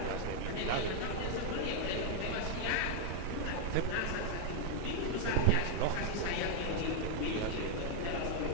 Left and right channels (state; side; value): different; both; correlation 0.00